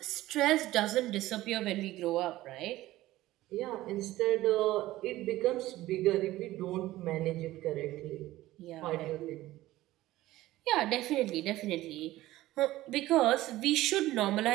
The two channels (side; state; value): left; quieter; 16.4 dB